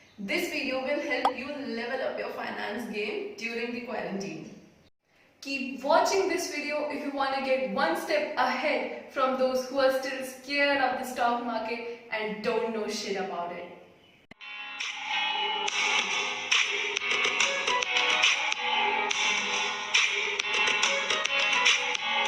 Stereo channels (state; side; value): identical; both; correlation 1.00